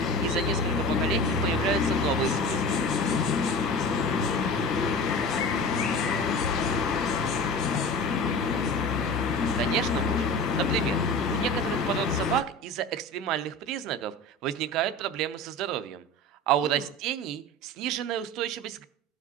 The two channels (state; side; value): normal; both; correlation 0.34